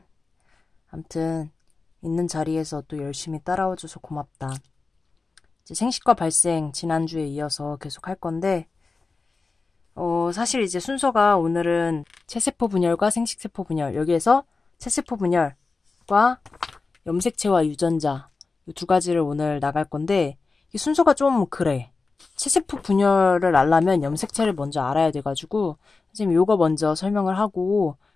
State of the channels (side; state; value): right; quieter; 4.0 dB